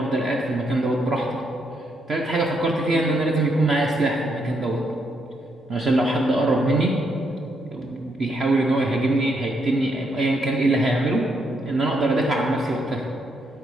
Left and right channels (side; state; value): both; normal; correlation 0.77